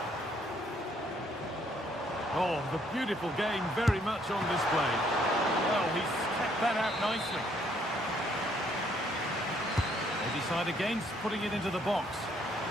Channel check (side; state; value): both; normal; correlation 0.67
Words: Oh, the beautiful game very much on display. Well, he's kept that out nicely. They decide against putting it into the box.